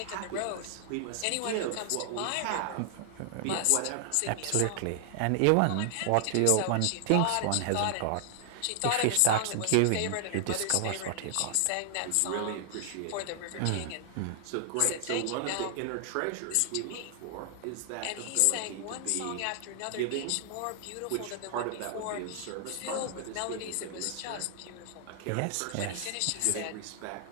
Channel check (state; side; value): different; both; correlation 0.00